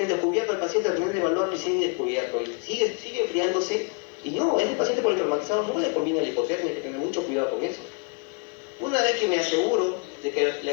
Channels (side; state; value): right; quieter; 34.0 dB